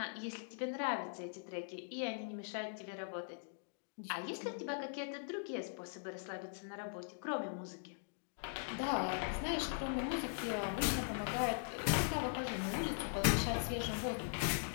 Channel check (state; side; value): silent; right; digital silence